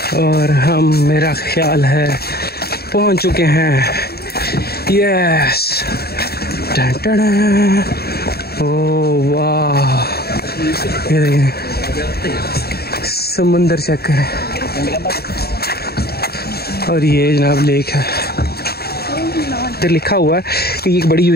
और हम, मेरा ख्याल है, पहुंच चुके हैं। यस, ओह वाह, ये देखिए समुंदर चेक करें। और ये जनाब लेक है, इधर लिखा हुआ है कि ये एक बड़ी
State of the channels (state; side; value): late; right; 0.46 ms